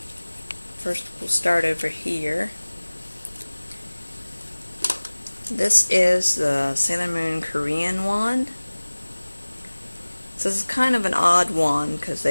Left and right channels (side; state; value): both; inverted; correlation -1.00